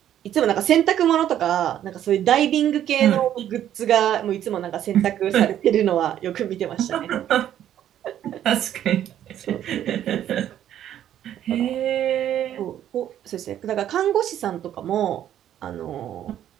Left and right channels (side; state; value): left; quieter; 11.0 dB